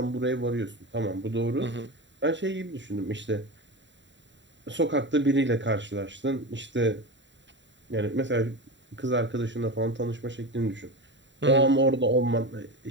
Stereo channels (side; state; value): left; late; 0.53 ms